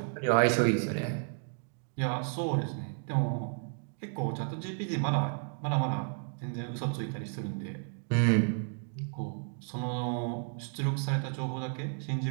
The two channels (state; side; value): silent; left; 56 dB below the other